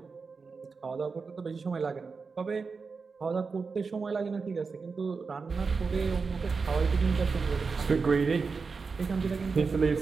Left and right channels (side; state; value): left; quieter; 4.8 dB